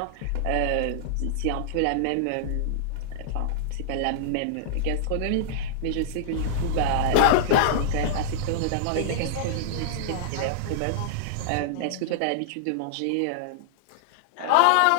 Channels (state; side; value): different; both; correlation -0.02